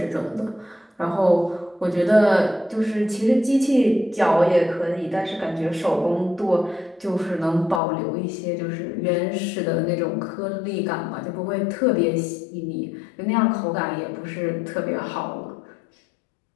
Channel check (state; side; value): drops out; right; at 7.8 s